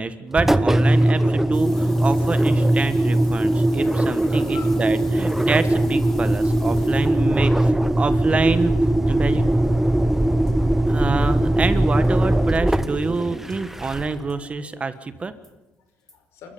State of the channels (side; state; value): both; normal; correlation 0.96